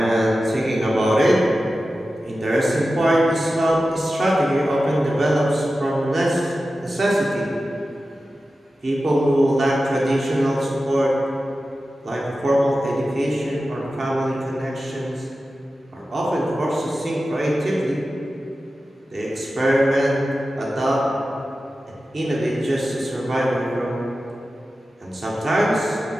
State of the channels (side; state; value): both; normal; correlation 0.93